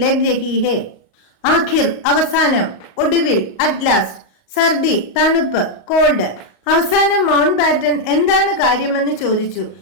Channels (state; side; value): late; right; 38 ms